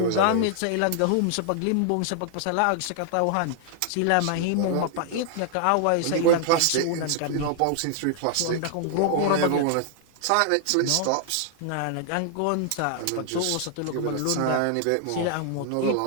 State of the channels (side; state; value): both; different; correlation 0.00